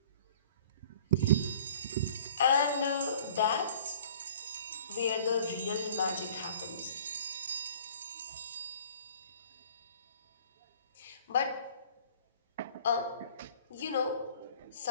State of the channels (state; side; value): inverted; both; correlation -0.50